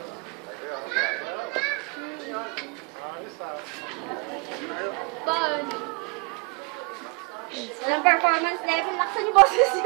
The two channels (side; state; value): left; quieter; 32.4 dB